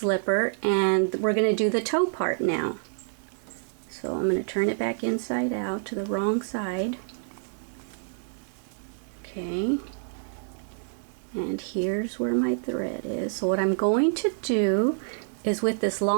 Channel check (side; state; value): left; silent; digital silence